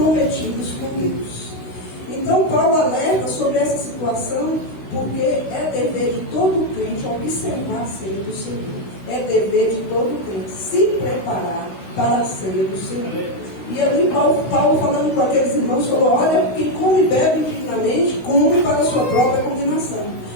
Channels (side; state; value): right; late; 16 ms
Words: com Deus. Então Paulo alerta sobre essa situação, porque é dever de todo crente observar a ceia do Senhor. É dever de todo crente se preparar para a ceia do Senhor. E ali Paulo falando com aqueles irmãos, falou, olha, quem come e bebe indignamente, come para a sua própria condenação.